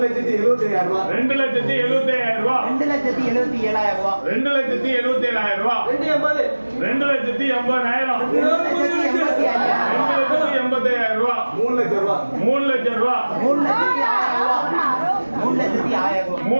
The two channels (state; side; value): inverted; both; correlation -1.00